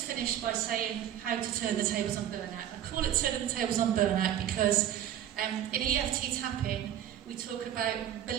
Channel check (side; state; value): left; quieter; 10.9 dB